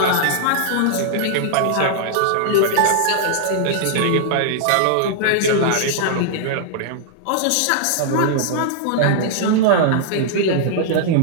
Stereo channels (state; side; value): different; both; correlation -0.01